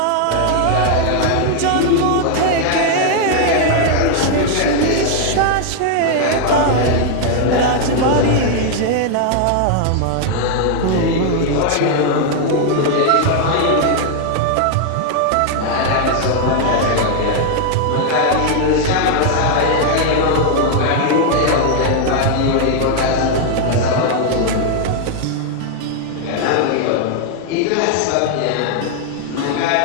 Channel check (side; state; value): both; different; correlation 0.00